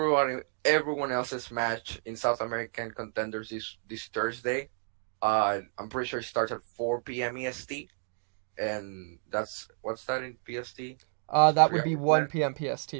else's match in South American Contenders this Thursday. I'm pretty sure it starts at 4 p.m. EST, and what's that in PST? That would be 1 p.m. PST.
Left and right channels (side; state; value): left; silent; 57 dB below the other